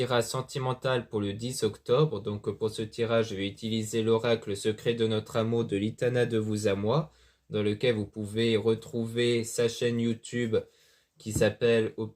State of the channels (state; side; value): identical; both; correlation 1.00